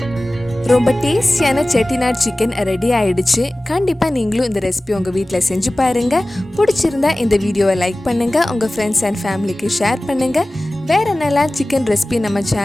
ரொம்ப டேஸ்டியான செட்டிநாட் சிக்கன் ரெடி ஆயிடுச்சு. கண்டிப்பாக நீங்களும் இந்த ரெசிபி உங்கள் வீட்டில் செஞ்சு பாருங்கள். பிடிச்சிருந்தா இந்த வீடியோவை லைக் பண்ணுங்கள், உங்கள் ஃப்ரெண்ட்ஸ் அண்ட் ஃபேமிலிக்கு ஷேர் பண்ணுங்கள். வேறு என்னெல்லாம் சிக்கன் ரெசிபி நம்ம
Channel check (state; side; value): normal; both; correlation 0.97